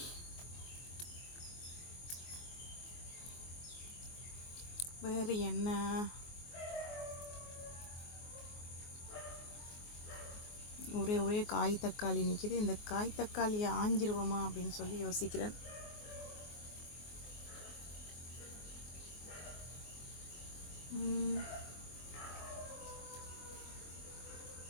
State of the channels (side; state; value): right; late; 24 ms